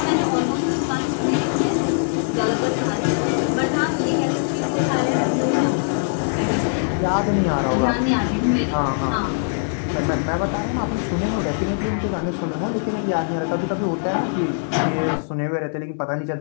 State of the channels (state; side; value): silent; right; 64 dB below the other